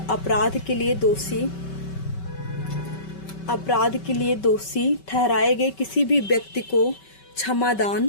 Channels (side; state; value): right; late; 5.3 ms